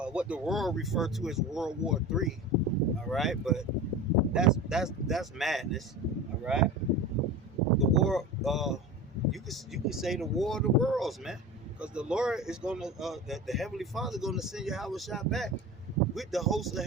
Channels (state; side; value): normal; both; correlation 0.31